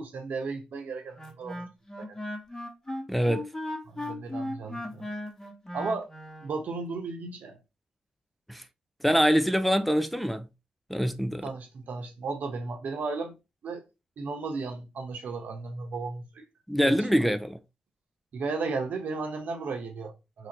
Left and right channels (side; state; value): both; normal; correlation 0.92